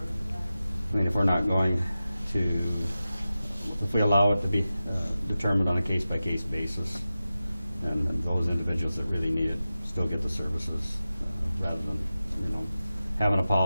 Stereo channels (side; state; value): both; inverted; correlation -0.93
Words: mean, if we're not going to, if we allow it to be determined on a case-by-case basis, and those individuals that really need it still get the services, rather than, you know, having a